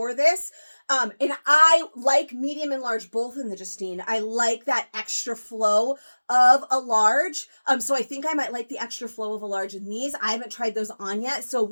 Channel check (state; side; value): inverted; both; correlation -1.00